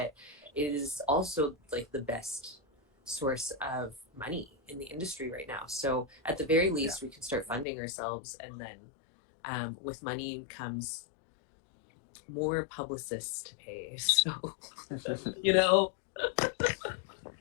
it is also like the best source of money in the industry right now. So at the very least, we can start funding ourselves, and then with money comes more publicists to pay. So you know,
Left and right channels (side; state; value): right; drops out; at 7.7 s